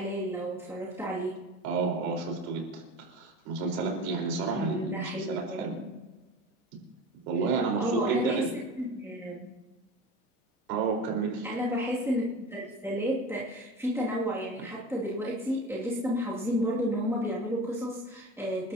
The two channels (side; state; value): both; normal; correlation 0.33